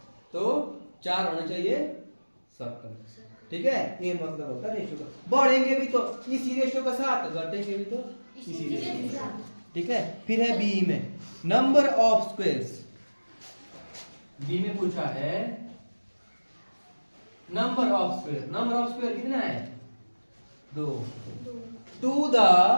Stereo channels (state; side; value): inverted; both; correlation -1.00